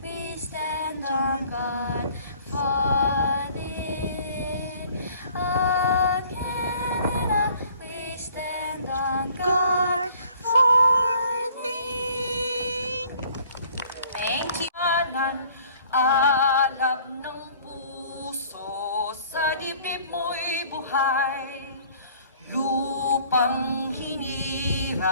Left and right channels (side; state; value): both; inverted; correlation -0.55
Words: we stand on guard for thee. Oh Canada, we stand on guard for thee. Thank you. Alam ng puso sa dibdib mo'y buhay. Lupang